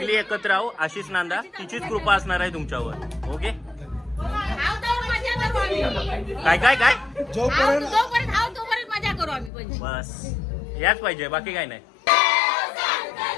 एकत्र राहू. आशिष नांदा तिचीच कृपा असणार आहे तुमच्यावर. ओके. काय काय काय जोपर्यंत तोपर्यंत मजा करू आम्ही पण. बस याच पाहिजे बाकी काय नाही.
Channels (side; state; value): right; drops out; at 9.5 s